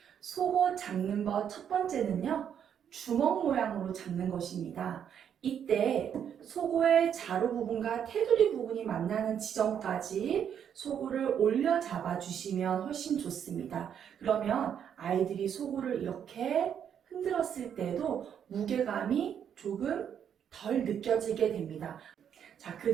속옷 잡는 것 첫 번째는요, 주먹 모양으로 잡는 것입니다. 이때 속옷의 자루 부분과 테두리 부분이 만나는 지점까지 속옷을 올려 잡아주시면 훨씬 좋습니다. 그러면 아이들이 속옷을 이렇게 흔들었을 때도 무게감이 조금 덜 느껴지게 됩니다. 자, 그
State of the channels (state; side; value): quieter; left; 8.6 dB